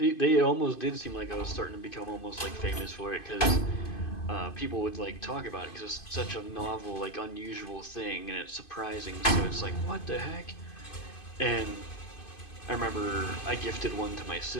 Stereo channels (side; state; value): right; late; 2.5 ms